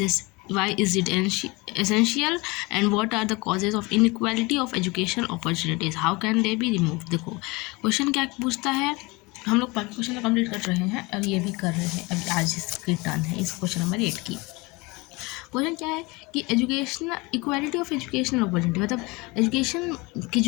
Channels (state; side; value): quieter; right; 24.9 dB